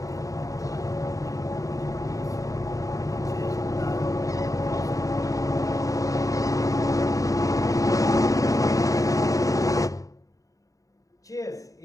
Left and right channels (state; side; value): late; right; 0.16 ms